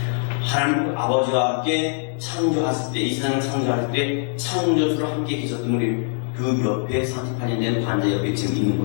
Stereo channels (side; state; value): right; silent; 57 dB below the other